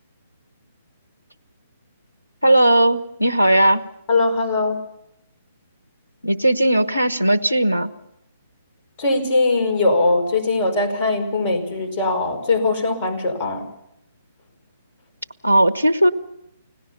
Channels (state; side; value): inverted; both; correlation -0.83